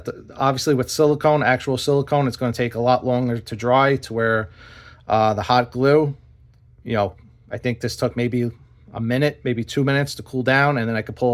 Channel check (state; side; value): identical; both; correlation 1.00